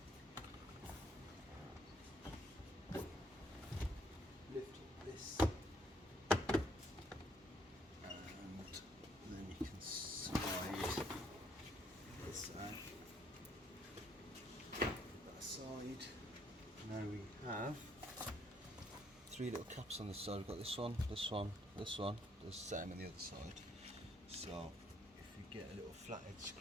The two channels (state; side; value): normal; both; correlation 0.68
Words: Lift up this. Now we have three little caps on this side. We've got this one, this one, this one. The same on the other side. So if we get a little flathead